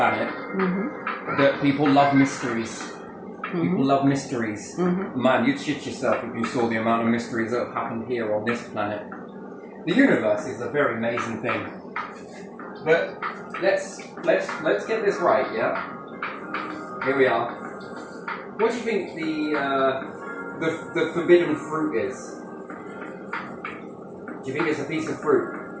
that people love mysteries. People love mysteries. Man, you'd shit yourself if you saw the amount of mysteries that have happened here on this planet. The universe is a very amazing thing. But let's get this right, yeah? Here we are. What do you think the forbidden fruit is? Do you think it's a piece of fruit?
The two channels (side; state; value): both; identical; correlation 1.00